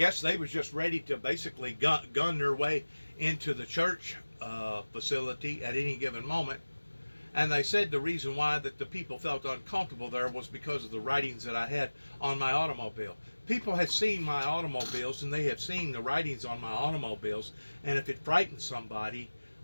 they was just ready to basically gun their way into the church facility at any given moment. And they said the reason why that the people felt uncomfortable there was because of the writings that I had on my automobile. People have seen my automobiles, and they have seen the writings on my automobiles, and if it frightens somebody,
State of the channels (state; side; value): inverted; both; correlation -1.00